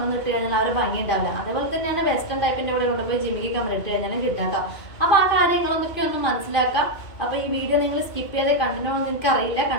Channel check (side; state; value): right; late; 2.4 ms